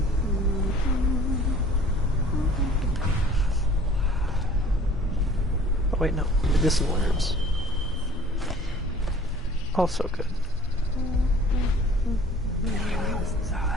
Oh wait, no. Medicinal herbs. Also good.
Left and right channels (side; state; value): both; normal; correlation 0.51